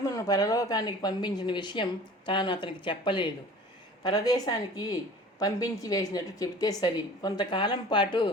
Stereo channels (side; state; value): both; normal; correlation 0.44